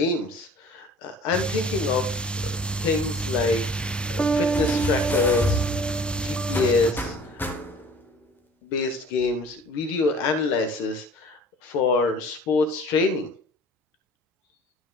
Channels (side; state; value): both; normal; correlation 0.48